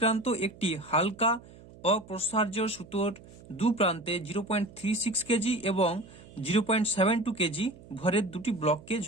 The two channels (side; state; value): right; noise; hum, 21 dB below the sound